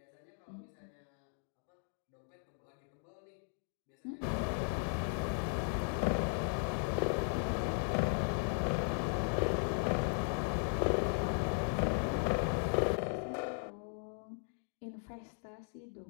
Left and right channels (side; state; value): right; silent; 53 dB below the other